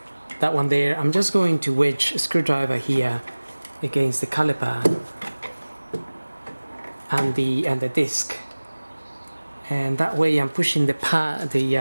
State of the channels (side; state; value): both; inverted; correlation -1.00